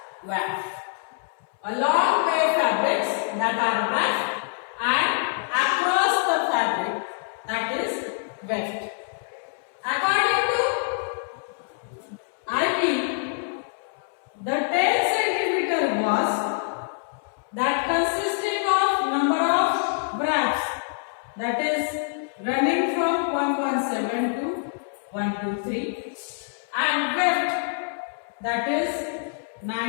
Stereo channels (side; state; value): right; silent; 61 dB below the other